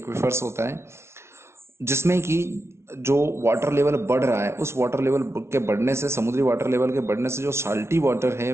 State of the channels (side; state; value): left; late; 0.13 ms